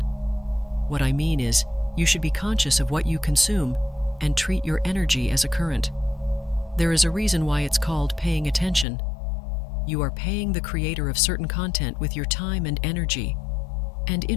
What I mean is, you should be conscious of what you consume and treat your energy as a current. There is a reason why it's called paying attention. You are paying the creator of certain content with your time and energy, and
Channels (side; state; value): right; drops out; at 8.8 s